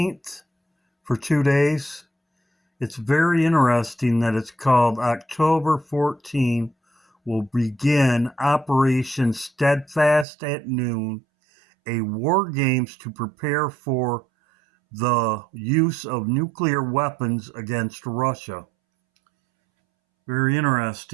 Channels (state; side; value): drops out; left; at 10.2 s